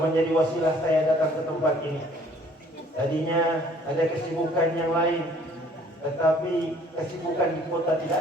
menjadi wasilah saya datang ke tempat ini. Tadinya ada kesibukan yang lain, tetapi kesibukan di kota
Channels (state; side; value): normal; both; correlation 0.57